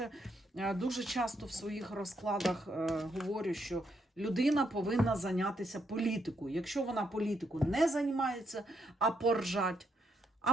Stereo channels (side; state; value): both; normal; correlation 0.77